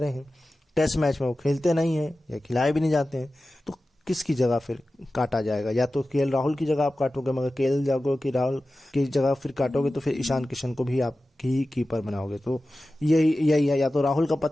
हैं, टेस्ट मैच में वो खेलते नहीं हैं या खिलाए भी नहीं जाते हैं, तो किसकी जगह फिर काटा जाएगा? या तो केएल राहुल की जगह आप काटोगे, मगर केएल राहुल की जगह फिर काटोगे तो फिर ईशान किशन को भी आप ही कीपर बनाओगे। तो यही है, या तो राहुल का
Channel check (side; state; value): both; normal; correlation 0.95